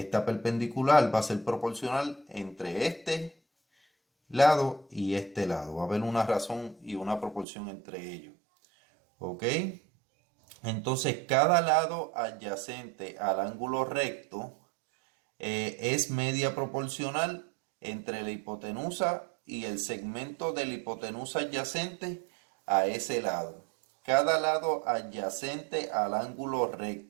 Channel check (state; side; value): drops out; left; at 7.5 s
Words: perpendicular va a ser proporcional entre este lado y este lado. Va a haber una razón y una proporción entre ellos. ¿Ok? Entonces, cada lado adyacente al ángulo recto es media proporcional entre la hipotenusa y el segmento de la hipotenusa adyacente a ese lado. Cada lado adyacente al ángulo